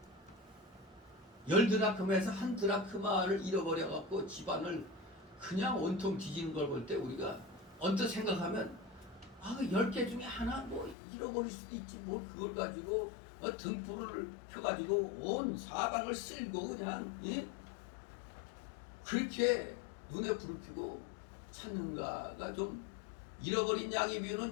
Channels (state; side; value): drops out; right; at 11.0 s